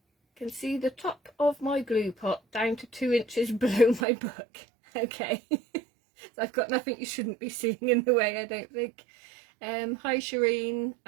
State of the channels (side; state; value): left; drops out; at 4.0 s